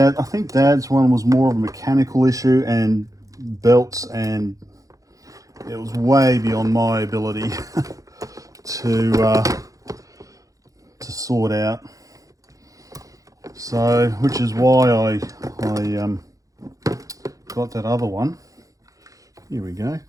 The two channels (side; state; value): left; late; 0.16 ms